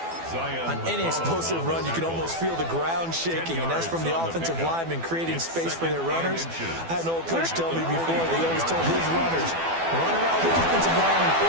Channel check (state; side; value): late; left; 12 ms